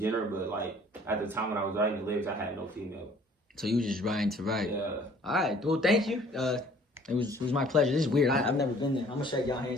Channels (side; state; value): both; normal; correlation 0.55